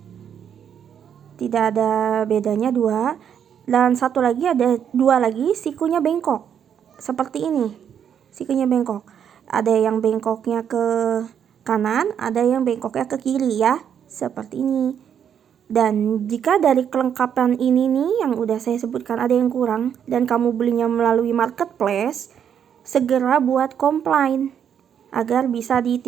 tidak ada bedanya 2. Dan satu lagi ada 2 lagi sikunya bengkok seperti ini. Sikunya bengkok. Ada yang bengkoknya ke kanan, ada yang bengkoknya ke kiri ya, seperti ini. Dan jika dari kelengkapan ini nih yang udah saya sebutkan ada yang kurang dan kamu belinya melalui marketplace, segera buat komplain agar bisa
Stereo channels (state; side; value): quieter; left; 8.5 dB